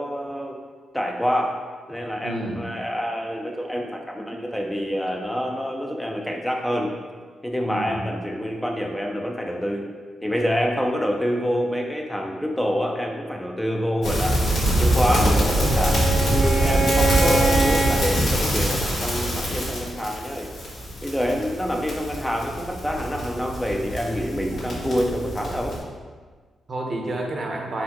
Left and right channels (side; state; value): both; normal; correlation 0.88